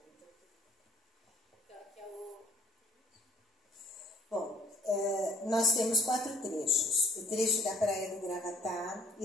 Bom, nós temos 4 trechos. O trecho da Praia do Gravatá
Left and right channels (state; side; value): normal; both; correlation 0.59